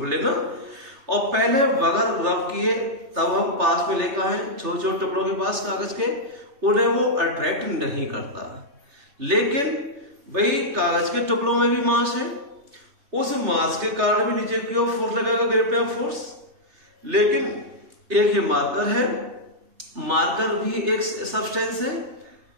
लेना, और पहले बगैर रब किए तब हम पास में लेकर आए छोटे छोटे टुकड़ों के पास कागज के, उन्हें वो अट्रैक्ट नहीं करता। लेकिन भाई कागज के टुकड़ों में भी मास है, उस मास के कारण भी नीचे की ओर फोर्स लगेगा, ग्रेविटेशनल फोर्स। लेकिन एक ये मार्कर है, मार्कर भी एक सब्सटेंस है,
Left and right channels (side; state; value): left; late; 3.3 ms